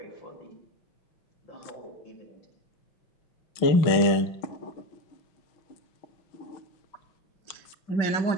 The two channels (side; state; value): right; late; 6.3 ms